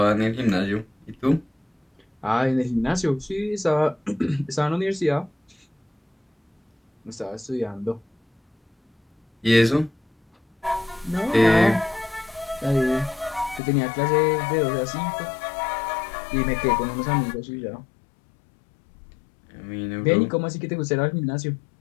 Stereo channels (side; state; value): right; drops out; at 13.6 s